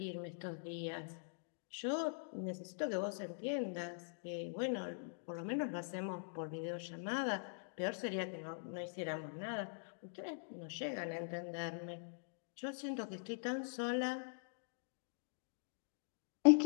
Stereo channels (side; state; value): right; silent; digital silence